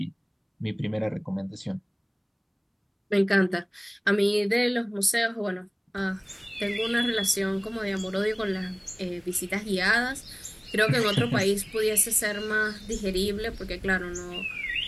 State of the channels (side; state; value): both; identical; correlation 1.00